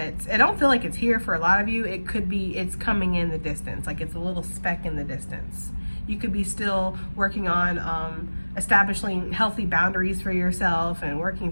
I don't feel like it's here for a lot of you. It could be it's coming in the distance, like it's a little speck in the distance. You could be still working on establishing healthy boundaries for yourself and working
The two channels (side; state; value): both; inverted; correlation -1.00